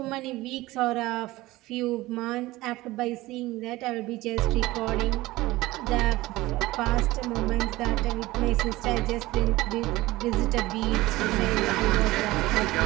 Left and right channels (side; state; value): left; quieter; 18.7 dB